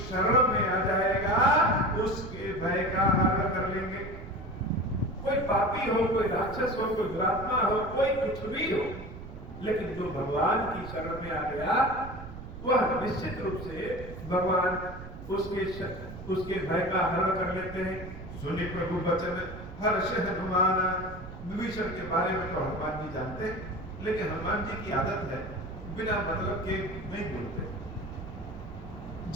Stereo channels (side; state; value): right; noise; rumble, 12 dB below the sound